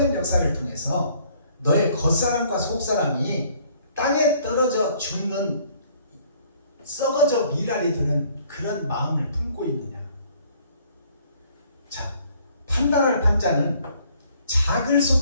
역사를 통해서 너의 겉사람과 속사람이 땅에 떨어져 죽는 썩어져 미랄이 드는 그런 마음을 품고 있느냐. 자, 판단할 판자는 작을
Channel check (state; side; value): inverted; both; correlation -0.61